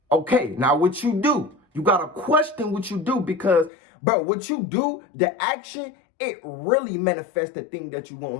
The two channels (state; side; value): drops out; right; at 3.7 s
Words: Okay, now what you do, you got to question what you do because, bro, what you do, the action, it really manifests the thing that you want